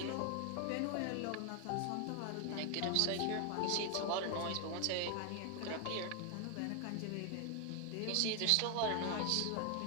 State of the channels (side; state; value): both; different; correlation 0.01